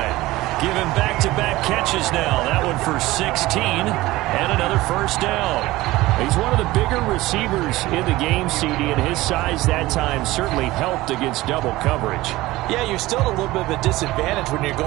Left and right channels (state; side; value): quieter; left; 18.3 dB